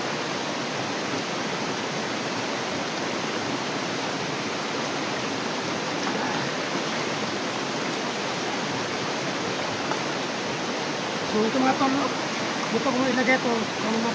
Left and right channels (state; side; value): identical; both; correlation 1.00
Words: So, ito mga tol, dito ko ilagay ito kung